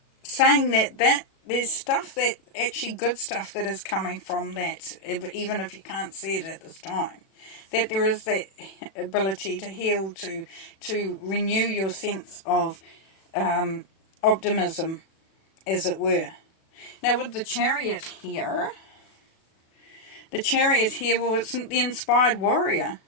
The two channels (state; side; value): late; right; 36 ms